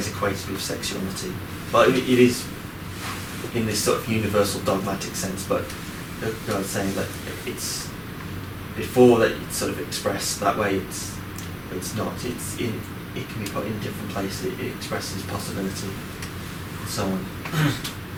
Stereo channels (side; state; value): both; identical; correlation 1.00